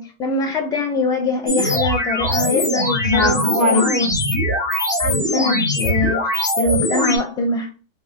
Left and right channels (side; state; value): left; late; 2.7 ms